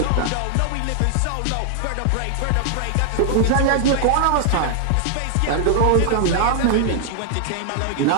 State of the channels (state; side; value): different; both; correlation 0.00